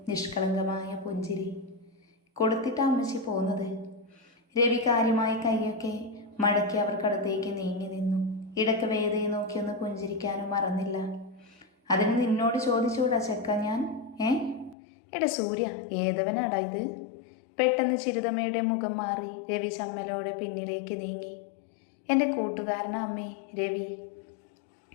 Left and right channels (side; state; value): right; drops out; at 14.8 s